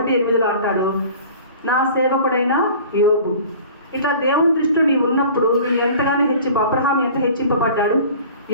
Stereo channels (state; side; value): inverted; both; correlation -0.44